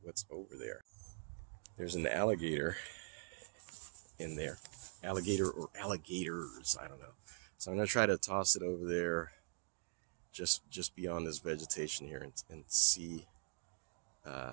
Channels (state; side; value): silent; left; digital silence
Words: what's over there. There's an alligator in there. Alligator or alligators, I don't know. So I'm going to try to toss it over there just beyond this vegetation here and see.